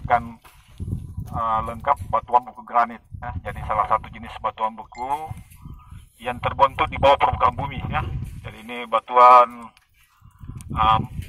lengkap batuan buku granit ya. Jadi salah satu jenis batuan buku yang terbentuk di bawah permukaan bumi ya. Jadi ini batuan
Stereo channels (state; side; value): identical; both; correlation 1.00